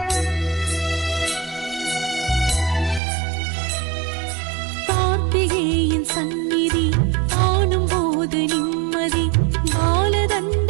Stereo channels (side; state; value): left; drops out; at 3.0 s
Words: சந்நிதி காணும் போது நிம்மதி பாலதண்ட